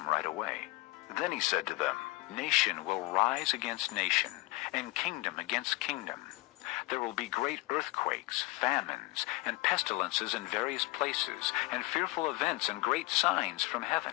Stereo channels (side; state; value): right; quieter; 21.8 dB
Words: right away. Then he said to them, Nation will rise against nation, and kingdom against kingdom. There will be great earthquakes, famines, and pestilences in various places, and fearful events and great signs from heaven.